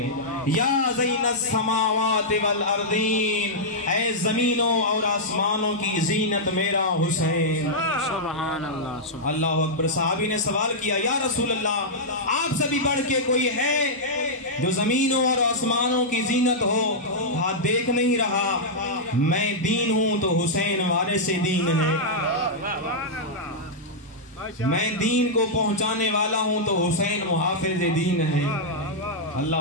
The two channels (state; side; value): normal; both; correlation -0.08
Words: یا زین السماوات والارضین، اے زمینوں اور آسمانوں کی زینت میرا حسین. سبحان اللہ. اللہ اکبر. صحابی نے سوال کیا یا رسول اللہ آپ سے بھی بڑھ کے کوئی ہے جو زمینوں اور آسمانوں کی زینت ہو؟ ہاتھ دیکھ نہیں رہا. میں دین ہوں تو حسین وارث دین ہے. میں دین کو پہنچانے والا ہوں تو حسین محافظ دین ہے.